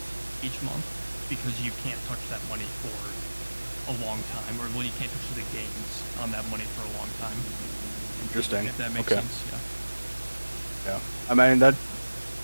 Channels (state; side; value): inverted; both; correlation -1.00